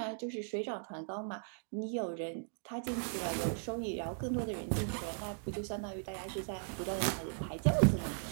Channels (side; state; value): left; silent; digital silence